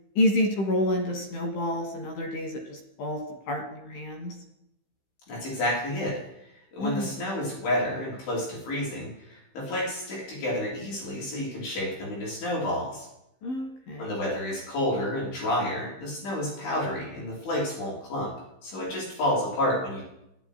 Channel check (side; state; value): right; late; 15 ms